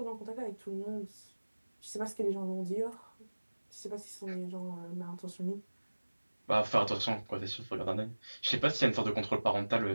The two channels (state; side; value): inverted; both; correlation -1.00